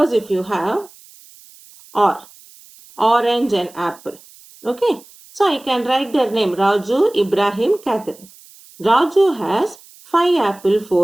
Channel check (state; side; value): noise; right; hiss, 24 dB below the sound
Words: if you have orange and apple. Okay. So I can write their name Raju, Ibrahim, Catherine. Raju has 5 apple,